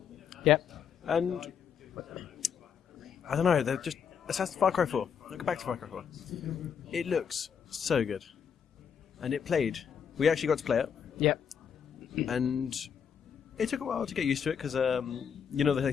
Yep. And I don't know, they're just Far Cry 4. Look back to Far Cry 4. It looks so good, and it played. We actually got to play it. Yep. And it took a while to get used to it because you know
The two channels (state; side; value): quieter; right; 7.4 dB